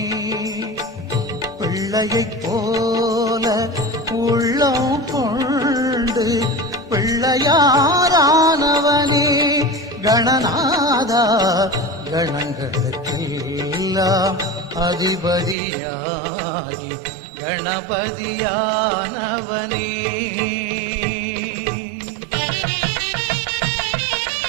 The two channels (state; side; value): drops out; left; at 15.6 s